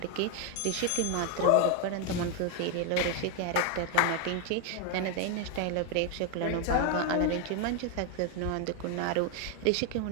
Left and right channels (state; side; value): different; both; correlation 0.01